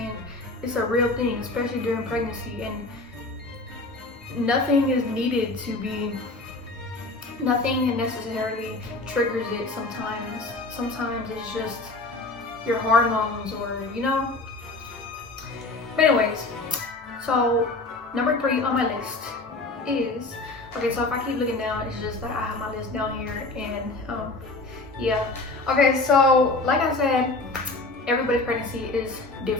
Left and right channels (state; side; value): quieter; right; 3.2 dB